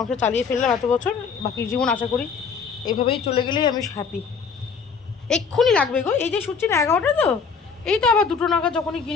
চালিয়ে ফেললাম এত বছর, বাকি জীবন আশা করি এইভাবেই চলে গেলেই আমি হ্যাপি। এক্ষুনি লাগবে গো, এই যে শুচ্ছি না 11টা, তো এই তো আবার 2টো নাগাদ যখনই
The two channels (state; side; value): quieter; right; 5.7 dB